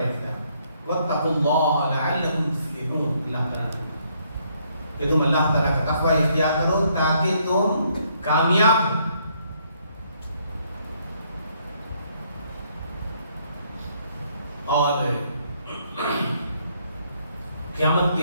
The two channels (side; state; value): both; inverted; correlation -0.70